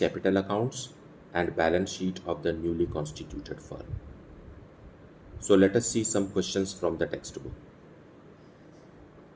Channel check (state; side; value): identical; both; correlation 1.00